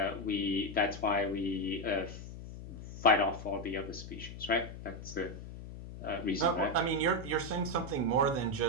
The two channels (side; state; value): left; noise; hum, 11 dB below the sound